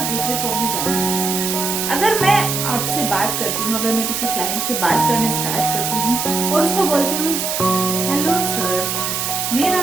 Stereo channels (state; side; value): noise; right; hiss, 1 dB below the sound